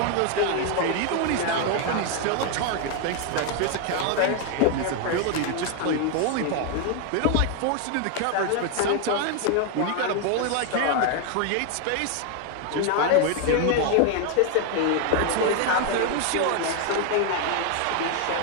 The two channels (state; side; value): different; both; correlation 0.01